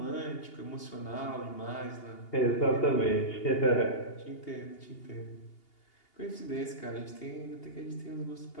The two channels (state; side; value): late; right; 2.8 ms